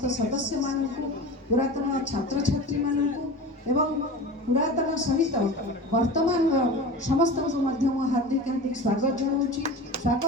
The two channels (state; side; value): normal; both; correlation 0.32